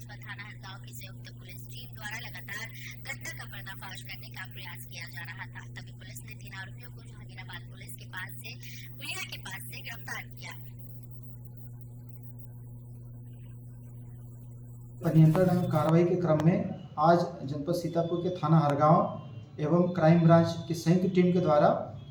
व थाना हरगांव की संयुक्त पुलिस टीम द्वारा लगातार घटना का पर्दाफाश करने का प्रयास किया जा रहा था। तभी पुलिस ने 3 आरोपियों को जहांगीराबाद पुलिस के पास से पुलिया के पास से गिरफ्तार किया। नियंत्रण एवं कार्रवाई के क्रम में आज जनपद सीतापुर के थाना हरगांव एवं क्राइम ब्रांच की संयुक्त टीम के द्वारा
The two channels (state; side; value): identical; both; correlation 1.00